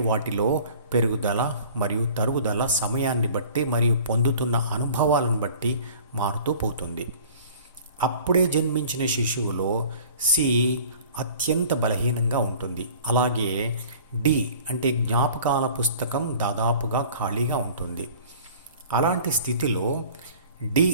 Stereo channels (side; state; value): both; inverted; correlation -0.46